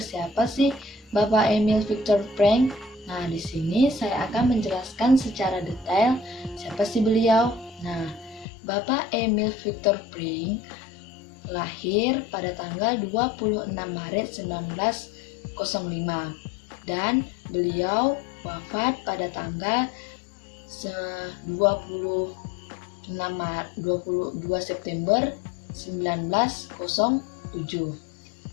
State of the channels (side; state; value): right; drops out; at 8.5 s